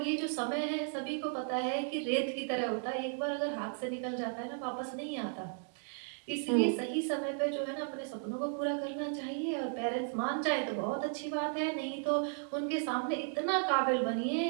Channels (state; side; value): silent; left; 55 dB below the other